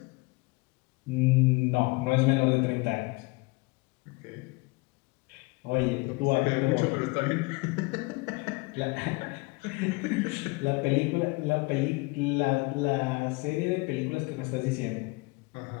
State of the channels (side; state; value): right; quieter; 25.6 dB